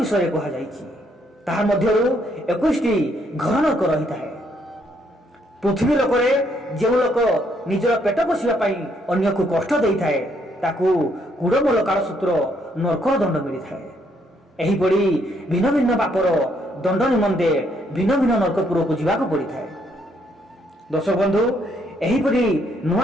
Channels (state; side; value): normal; both; correlation 0.71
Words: कहा जाइछि। ताहा मध्यरु 21 घर नरक रही थाए। पृथ्वी लोकरे जो लोक निजर पेट पोषिबा पाई अन्य को कष्ट देई थाए ताकू कुड़मूल कालसूत्र नरकर दंड मिली थाए। एही पड़ी भिन्न भिन्न पापर दंड निमंते भिन्न भिन्न नरकपुर को जीवाक पड़ी थाए। दर्शक बंधु, एही पड़ी